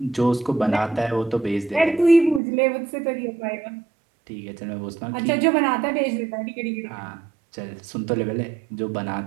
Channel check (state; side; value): drops out; left; at 2.4 s